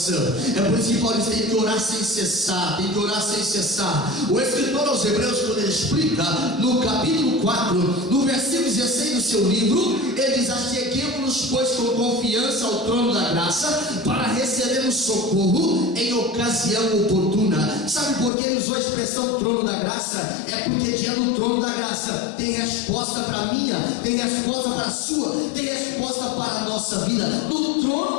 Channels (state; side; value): drops out; right; at 18.3 s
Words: É por isso que Paulo diz: tem que orar sem cessar, tem que orar sem cessar. O escritor aos Hebreus, quando ele explica no capítulo 4, no versículo 16 do seu livro, ele diz: acheguemo-nos, pois, com confiança ao trono da graça, para recebermos socorro em ocasião oportuna. Sabe por que ele usou a expressão trono da graça? É porque diante do trono da graça tem resposta para a minha, tem resposta para a sua, tem resposta para a nossa vida. No trono